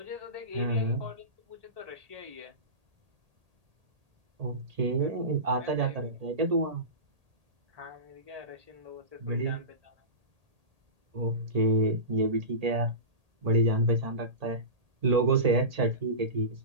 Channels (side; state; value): left; late; 1.8 ms